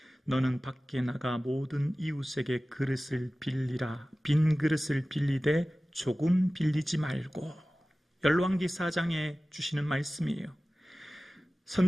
너는 밖에 나가 모든 이웃에게 그릇을 빌리라. 빈 그릇을 빌리되 조금 빌리지 말고. 열왕기 4장에 주시는 말씀이에요.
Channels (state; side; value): normal; both; correlation 0.96